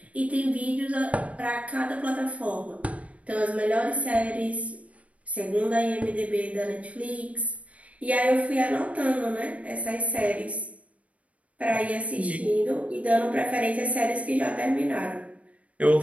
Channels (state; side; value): late; left; 0.065 ms